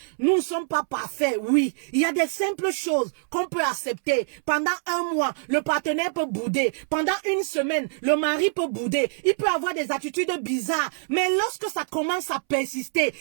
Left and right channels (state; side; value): silent; left; 62 dB below the other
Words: Nous ne sommes pas parfaits, oui. Il y a des simples choses qu'on peut accepter. Pendant un mois, le partenaire peut bouder. Pendant une semaine, le mari peut bouder. Il peut avoir des attitudes bizarres. Mais lorsque ça commence à persister,